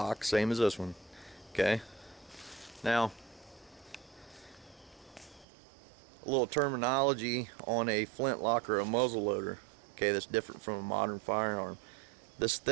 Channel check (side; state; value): left; drops out; at 5.5 s